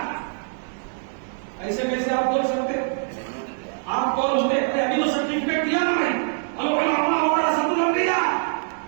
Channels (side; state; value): left; silent; digital silence